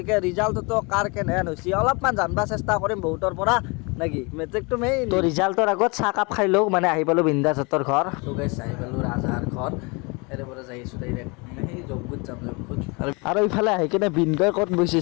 ৰিজাল্টতো কাৰ কেনেহেন হৈছে অলপমান জানিব চেষ্টা কৰিম বহুতৰ পৰা নাকি মেট্ৰিকটো মেইন তো ৰিজাল্টৰ আগত চাহ কাপ খাই লওঁ মানে আহি পালোঁ বিন্দাছ হতৰ ঘৰ তো গাইছ আহি পালোঁ ৰাজহাৰ ঘৰ এৰে পৰা যাই আছোঁ ডাইৰেক্ট মানে সেই যজ্ঞত যাম আৰু ইফালে আহি কিনে বিনগৈ ক'ত বহিছে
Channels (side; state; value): right; quieter; 29.0 dB